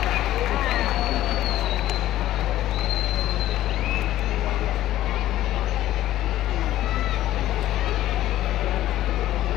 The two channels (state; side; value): quieter; right; 14.0 dB